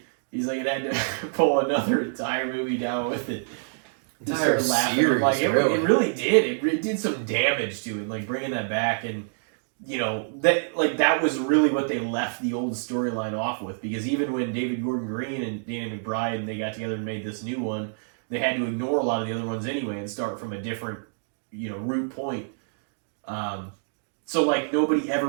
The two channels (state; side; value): silent; left; digital silence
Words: He's like, it had to pull another entire movie down with it. Entire series, like it really did. It did some damage to it, like bringing that back, and you know that was really what they left the old storyline off with. Because even when David Gordon Green and Danny McBride and they got together and made this new one, they had to ignore a lot of the other ones anyway and start from a different, you know, root point. So, like, nobody